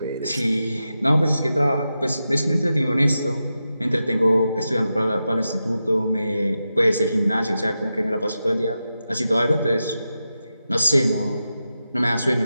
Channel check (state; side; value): inverted; both; correlation -0.90